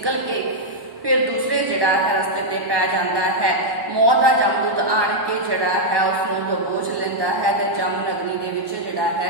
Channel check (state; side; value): late; left; 1.1 ms